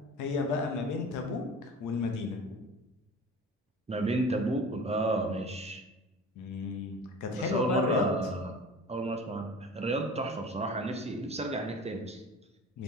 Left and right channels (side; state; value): both; normal; correlation 0.39